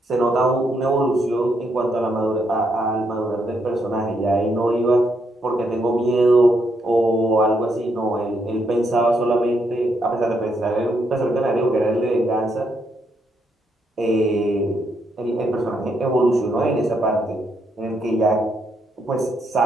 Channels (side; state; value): both; normal; correlation 0.77